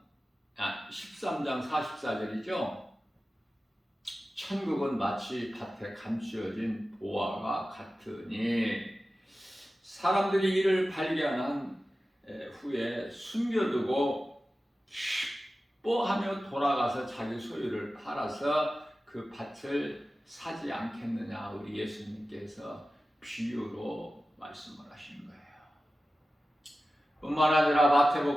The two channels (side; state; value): both; normal; correlation 0.95